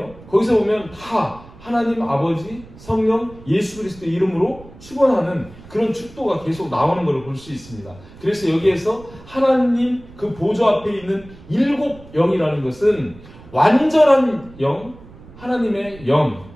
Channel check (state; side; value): noise; right; rumble, 20 dB below the sound